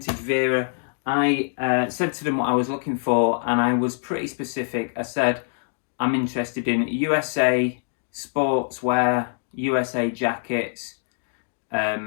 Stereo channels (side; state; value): right; silent; 56 dB below the other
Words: Vera, I said to them what I was looking for, and I was pretty specific. I said, I'm interested in USA sportswear, USA jackets,